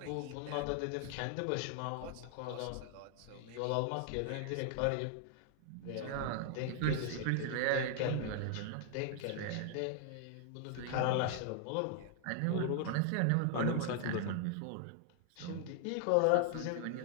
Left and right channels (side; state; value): both; different; correlation 0.00